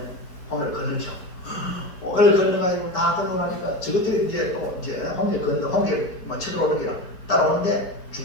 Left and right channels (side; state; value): right; late; 4.6 ms